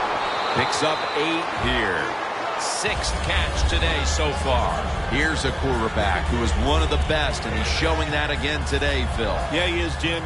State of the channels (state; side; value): identical; both; correlation 1.00